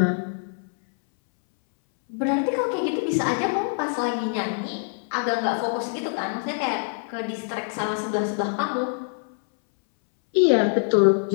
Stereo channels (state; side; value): silent; right; 62 dB below the other